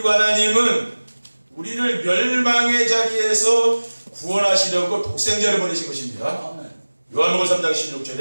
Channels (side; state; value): both; inverted; correlation -1.00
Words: 하나님은 우리를 멸망의 자리에서 구원하시려고 독생자를 보내신 것입니다. 요한복음 3장